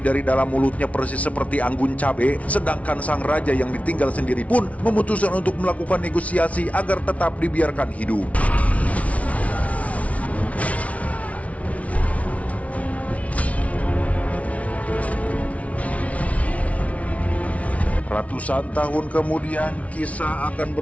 dalam mulutnya persis seperti anggun cabe, sedangkan sang raja yang ditinggal sendiri pun memutuskan untuk melakukan negosiasi agar tetap dibiarkan hidup. Ratusan tahun kemudian, kisah akan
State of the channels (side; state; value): right; late; 0.066 ms